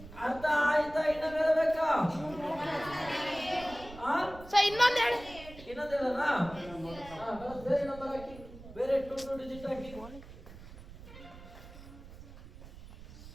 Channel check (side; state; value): right; noise; rumble, 17 dB below the sound